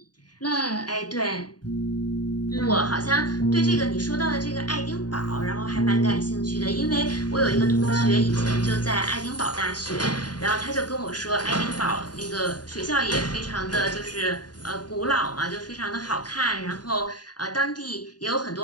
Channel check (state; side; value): late; right; 0.70 ms